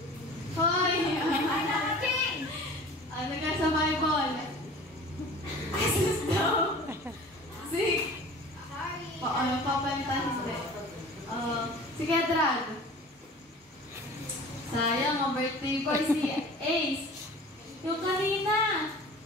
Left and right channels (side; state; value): both; normal; correlation 0.42